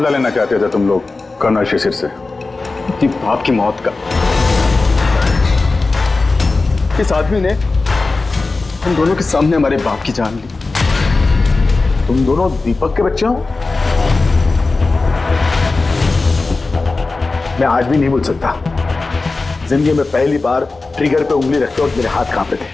लेना चाहते थे तुम लोग कर्नल शिशिर से? बाप की मौत का। इस आदमी ने हम दोनों के सामने हमारे बाप की जान ली। तुम दोनों दीपक के बच्चे हो? मैं आज भी नहीं भूल सकता, जिंदगी में पहली बार ट्रिगर पे उंगली रखते वक्त मेरे हाथ कांपे थे,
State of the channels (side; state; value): right; quieter; 3.6 dB